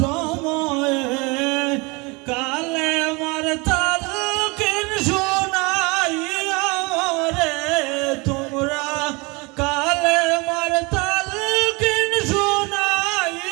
সময়ে কালে মার তালকিন শোনাই আমরে তোমরা কালে মার তালকিন শোনাই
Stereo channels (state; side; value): quieter; left; 27.1 dB